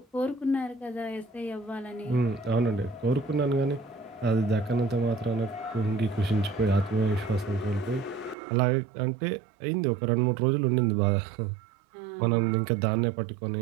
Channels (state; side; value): drops out; left; at 8.3 s